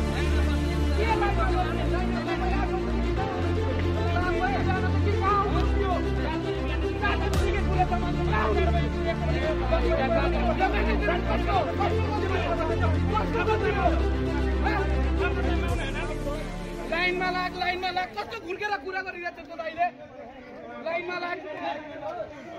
लाइनमा लाग कस्तो घुर्केर कुरा गरिरहेछ त अहिले लाइनमा लाग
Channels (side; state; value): both; identical; correlation 1.00